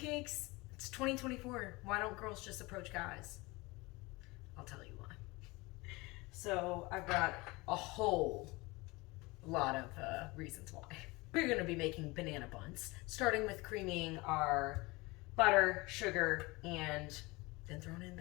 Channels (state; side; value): quieter; right; 23.6 dB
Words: It's 2024. Why don't girls just approach guys? I'll tell you why. So I've got a whole lot of reasons why. We're going to be making banana buns, starting with creaming our butter, sugar, and then throwing in